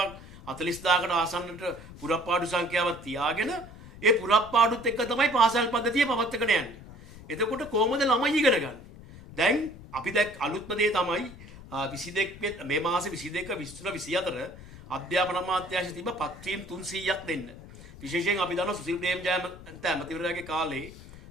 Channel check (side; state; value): left; noise; rumble, 17 dB below the sound